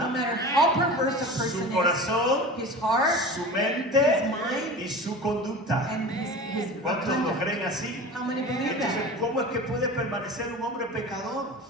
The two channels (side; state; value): both; normal; correlation 0.34